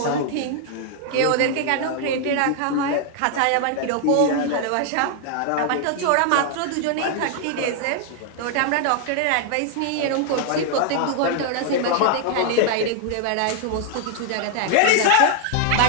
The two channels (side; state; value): both; different; correlation 0.00